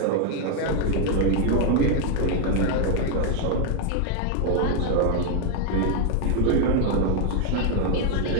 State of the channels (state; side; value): different; both; correlation 0.00